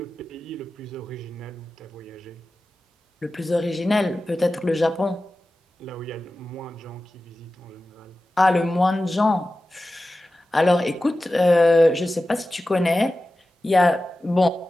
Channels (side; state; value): both; normal; correlation 0.95